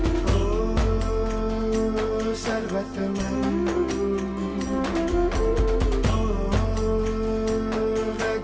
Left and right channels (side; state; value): both; identical; correlation 1.00